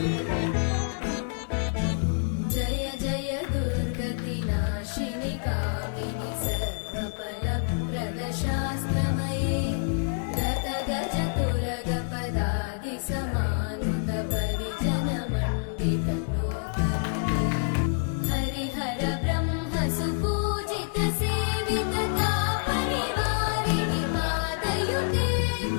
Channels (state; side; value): silent; right; digital silence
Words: जय जय दुर्गतिनाशिनि कामिनि सर्वफलप्रद शास्त्रमये रतगजतुरगपदादि समानुत परिजनमण्डित लोकनुते हरिहर ब्रह्म सुपूजित सेवित तापनिवारिणि पादयुते